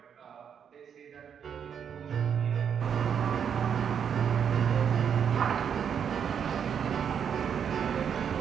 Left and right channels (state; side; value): quieter; left; 7.8 dB